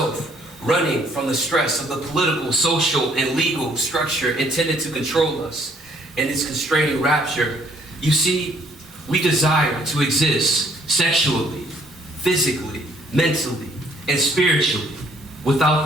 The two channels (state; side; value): normal; both; correlation 0.63